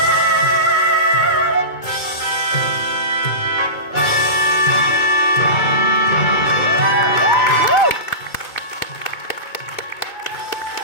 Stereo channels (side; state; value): right; late; 2.2 ms